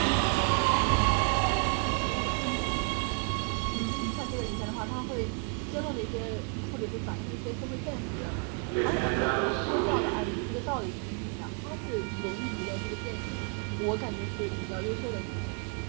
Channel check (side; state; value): left; quieter; 39.8 dB